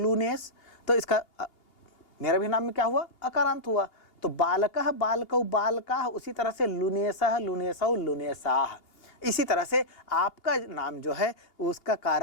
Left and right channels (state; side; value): late; right; 2.8 ms